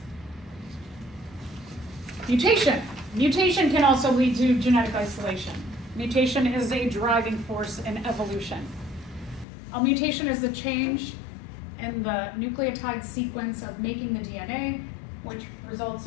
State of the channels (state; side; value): drops out; right; at 9.5 s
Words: Mutation. Mutation can also lead to genetic isolation. Mutation is a driving force in evolution. A mutation is the change in the nucleotide sequence of making the DNA, which results